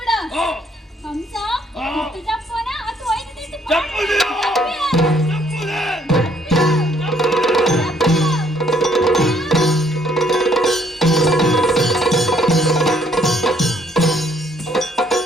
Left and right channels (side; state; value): both; normal; correlation 0.65